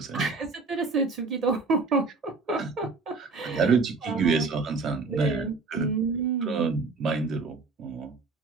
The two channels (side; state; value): left; quieter; 4.0 dB